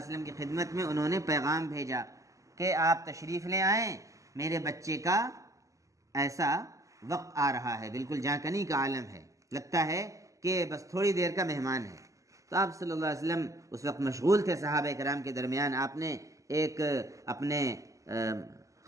وسلم کی خدمت میں انہوں نے پیغام بھیجا کہ آپ تشریف لے آئیں, میرے بچے کا ایسا وقت آ رہا ہے, بالکل جہاں کنی کا عالم ہے, لگتا ہے کہ بس تھوڑی دیر کا مہمان ہے. تو آپ صلی اللہ علیہ وسلم اس وقت مشغول تھے صحابہ کرام کے درمیان. آپ نے ایک اپنے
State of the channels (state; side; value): late; left; 0.16 ms